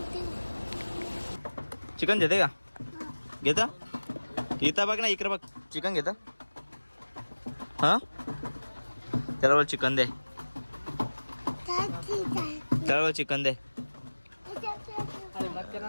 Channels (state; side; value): inverted; both; correlation -1.00